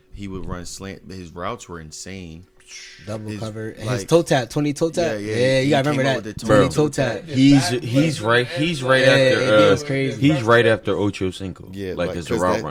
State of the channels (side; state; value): both; identical; correlation 1.00